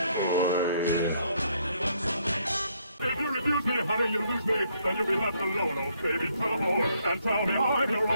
If you refuse me, honey, you lose me, then you'll be left alone, oh baby, come on, and tell me I'm your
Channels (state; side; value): inverted; both; correlation -0.70